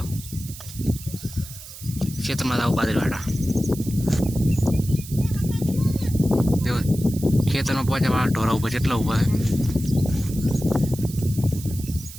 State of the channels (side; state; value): right; noise; hiss, 14 dB below the sound